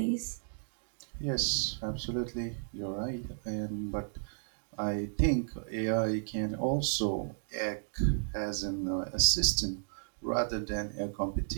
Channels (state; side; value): silent; left; digital silence